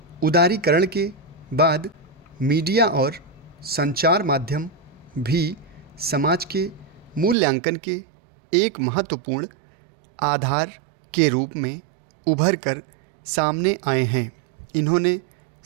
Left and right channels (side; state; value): left; drops out; at 7.4 s